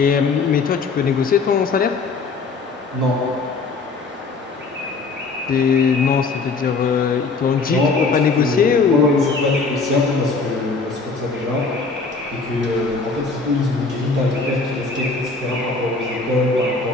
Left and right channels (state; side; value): quieter; right; 4.2 dB